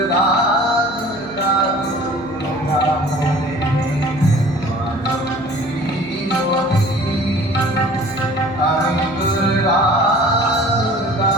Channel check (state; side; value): noise; right; hum, 20 dB below the sound